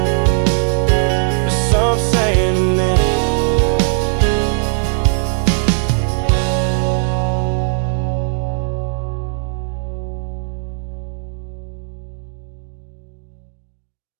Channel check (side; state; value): left; silent; 67 dB below the other